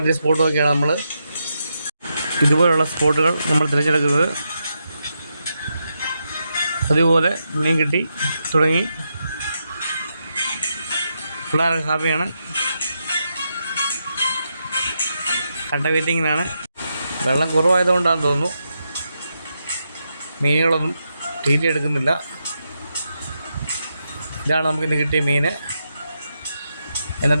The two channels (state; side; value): inverted; both; correlation -0.84